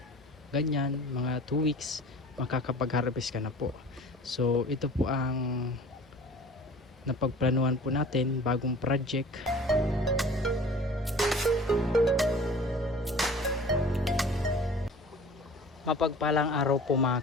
ganyan, mga 2 weeks, makakapag-harvest ka na po. So ito po ang napagplanuhan po natin, bagong project. Mapagpalang araw po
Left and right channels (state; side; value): normal; both; correlation 0.44